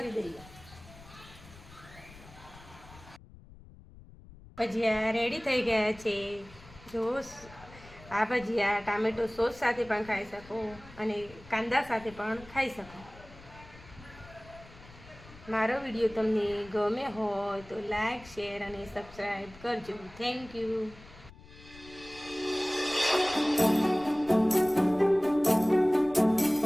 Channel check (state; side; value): noise; left; rumble, 20 dB below the sound